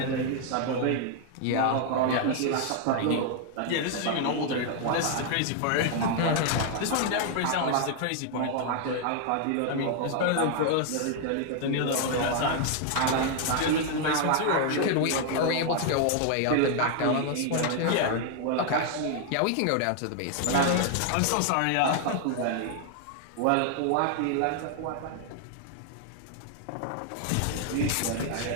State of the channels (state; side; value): different; both; correlation 0.00